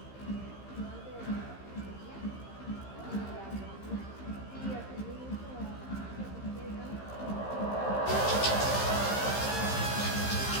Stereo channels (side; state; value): right; late; 15 ms